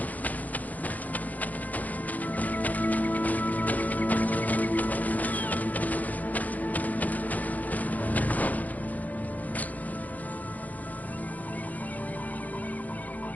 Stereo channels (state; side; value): late; right; 0.079 ms